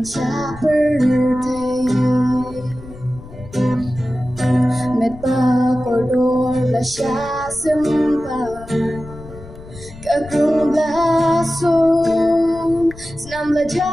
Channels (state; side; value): noise; left; rumble, 17 dB below the sound